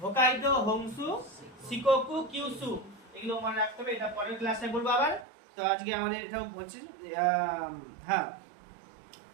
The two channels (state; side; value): drops out; left; at 5.2 s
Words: Hokkaido, Honshu, Shikoku, Kyushu, এগুলো মনে রাখতে হবে। এটা পরের ক্লাসে বলবো আবার। তো আজকে আমাদের এটাও বলছি। হ্যাঁ,